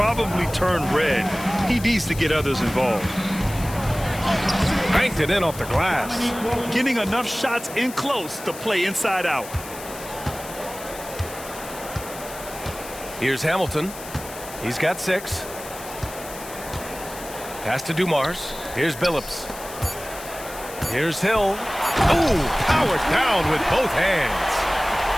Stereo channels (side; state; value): left; noise; hiss, 14 dB below the sound